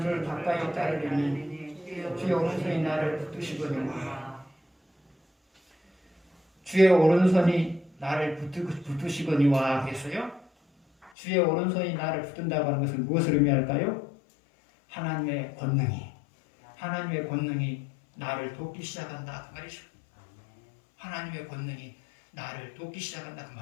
가까이 따르리니 주의 오른손이 나를 붙드시거니와 주의 오른손이 나를 붙드시거니와 그랬어요. 주의 오른손이 나를 붙든다고 하는 것은 무엇을 의미할까요? 하나님의 권능이 나를 돕기 시작한다 그 말이죠. 하나님의 권능이 나를 돕기 시작한다 그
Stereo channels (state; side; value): drops out; right; at 11.1 s